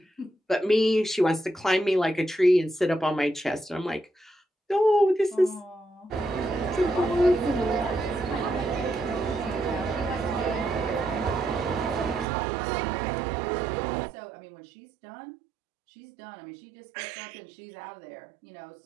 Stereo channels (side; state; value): left; drops out; at 12.2 s